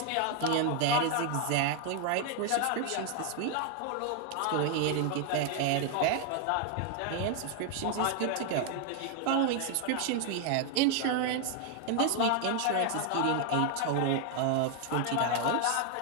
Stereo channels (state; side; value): different; both; correlation 0.00